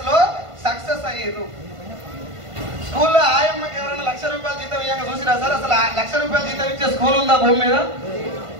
లో సక్సెస్ అయ్యారు. స్కూల్లో ఆయమ్మకి ఎవరైనా ₹1,00,000 జీతం ఇవ్వగా చూసిరా సార్? అసలు ₹1,00,000 జీతం ఇచ్చే స్కూల్ ఉందా భూమి మీద?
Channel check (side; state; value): left; late; 1.5 ms